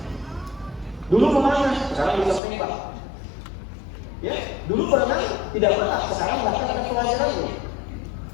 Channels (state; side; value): drops out; right; at 2.4 s